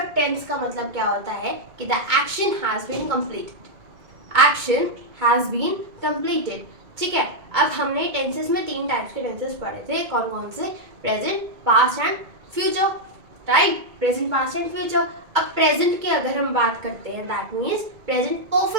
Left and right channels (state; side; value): late; left; 2.2 ms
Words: टेंस का मतलब क्या होता है कि the action has been completed. Action has been completed. ठीक है, अब हमने टेंसेस में 3 टाइप्स के टेंसेस पढ़े थे। कौन कौन से? Present, past and future. Right, present, past and future. अब प्रेजेंट की अगर हम बात करते हैं, दैट मीन्स प्रेजेंट